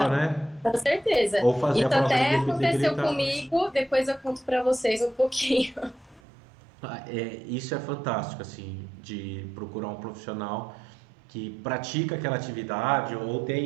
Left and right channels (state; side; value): drops out; left; at 6.2 s